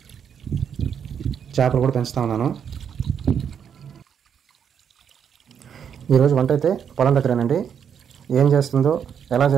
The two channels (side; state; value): left; quieter; 7.8 dB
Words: చేపలు కూడా పెంచుతా ఉన్నాను. ఈరోజు వంట అయితే పొలం దగ్గరేనండి. ఏం చేస్తుందో, ఎలా